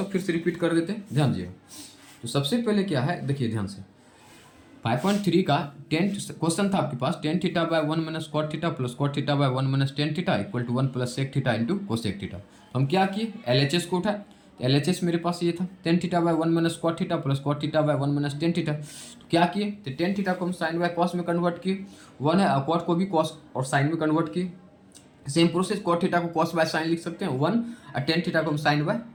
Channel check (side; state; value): both; identical; correlation 1.00